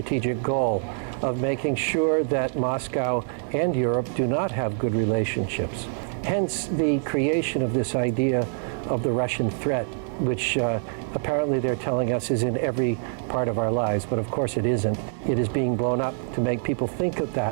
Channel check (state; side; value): silent; left; digital silence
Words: goal of making sure that Moscow and Europe do not have good relationships. Hence the creation of this idea of the Russian threat, which apparently they're telling us is in every part of our lives, but of course it isn't. It is being blown up to make people think of